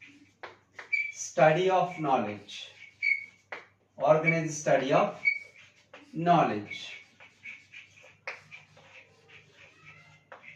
study of knowledge. Organized study of knowledge.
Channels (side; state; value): both; identical; correlation 1.00